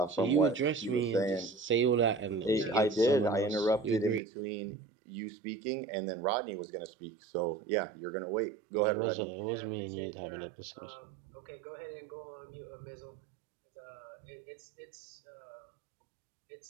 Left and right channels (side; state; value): left; drops out; at 4.2 s